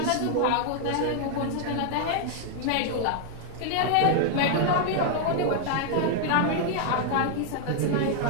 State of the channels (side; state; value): both; different; correlation 0.00